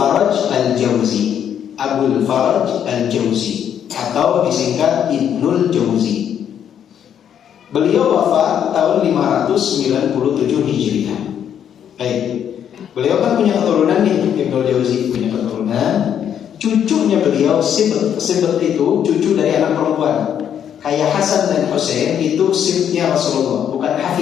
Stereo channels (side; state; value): right; quieter; 9.1 dB